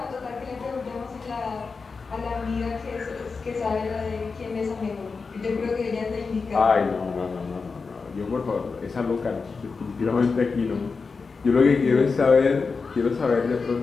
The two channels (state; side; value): quieter; right; 4.7 dB